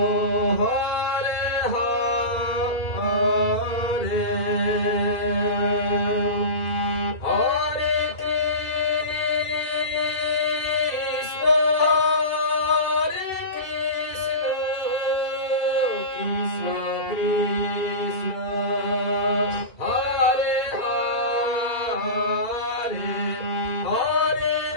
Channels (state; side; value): late; right; 2.7 ms